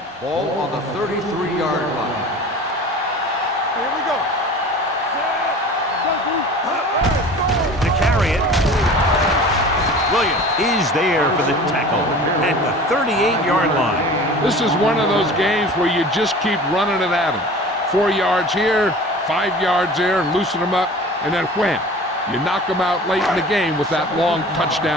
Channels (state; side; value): normal; both; correlation 0.41